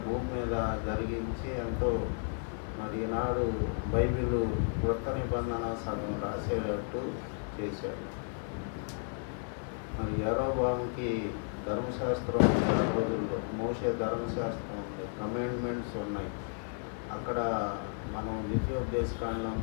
భూమి మీద జరిగించి ఎంతో మరి ఈనాడు బైబిల్ కొత్త నిబంధన సగం రాసేటట్టు చేశాడు. మరి యారోబాముకి ధర్మశాస్త్రం రోజుల్లో మోషే ధర్మశాస్త్రం కమాండ్మెంట్స్ ఉన్నాయి. అక్కడ మనం ద్వితీయోపదేశకాండం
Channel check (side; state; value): right; silent; 56 dB below the other